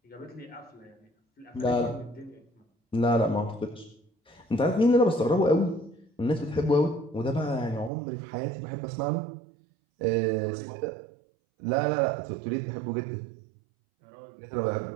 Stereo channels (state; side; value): drops out; left; at 7.9 s